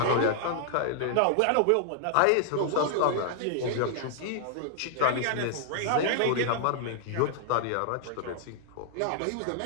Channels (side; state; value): both; different; correlation -0.01